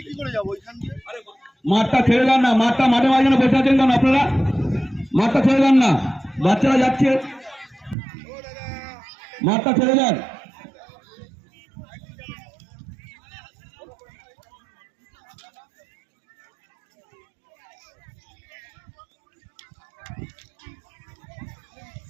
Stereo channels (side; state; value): left; drops out; at 8.0 s